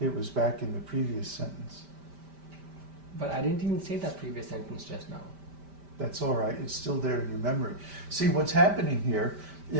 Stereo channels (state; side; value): late; left; 5.1 ms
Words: was back in the previous sentence. but I didn't even say that previous sentence just now. That's all right. It's still there in your memory. See, what's happening here